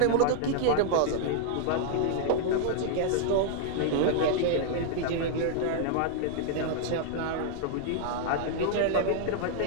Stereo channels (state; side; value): different; both; correlation -0.01